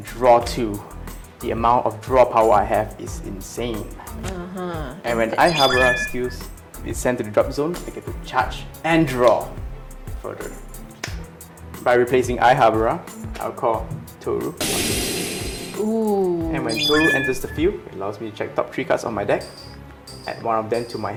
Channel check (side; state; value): both; identical; correlation 1.00